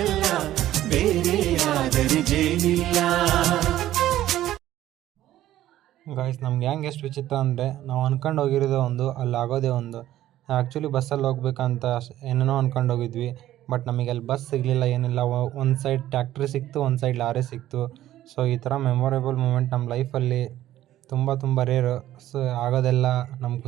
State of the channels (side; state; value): left; quieter; 13.5 dB